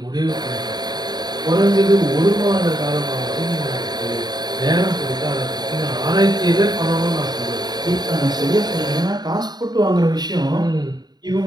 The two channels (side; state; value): left; late; 0.20 ms